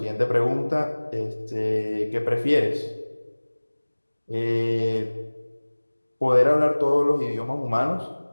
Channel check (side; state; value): both; inverted; correlation -1.00